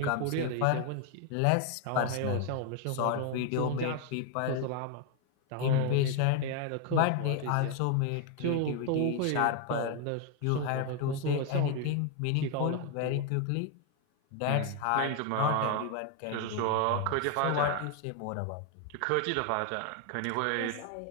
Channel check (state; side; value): different; both; correlation 0.01